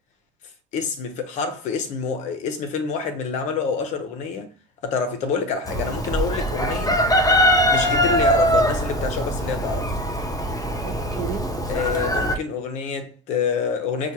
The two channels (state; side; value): normal; both; correlation 0.25